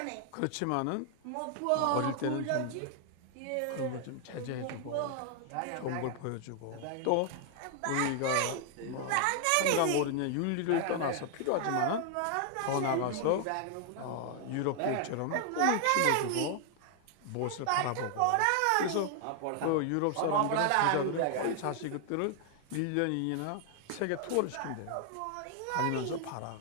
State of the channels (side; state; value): both; different; correlation 0.00